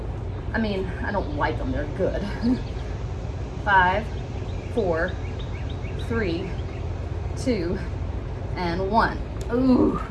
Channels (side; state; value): both; identical; correlation 1.00